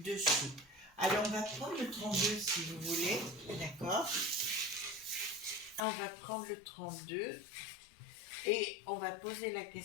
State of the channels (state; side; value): drops out; right; at 5.8 s